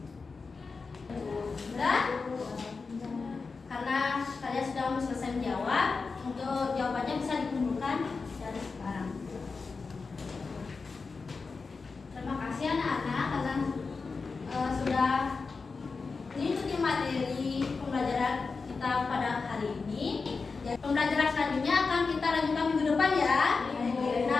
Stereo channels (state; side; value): quieter; right; 4.5 dB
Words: Sudah? Karena kalian sudah selesai menjawab, untuk jawabannya bisa dikumpulkan dari sekarang. Terima kasih anak-anak karena sudah mengikuti materi pembelajaran kita pada hari ini. Pembelajaran selanjutnya akan kita lanjutkan minggu depan ya.